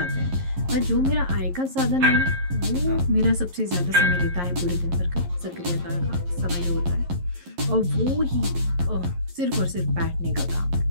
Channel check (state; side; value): late; left; 11 ms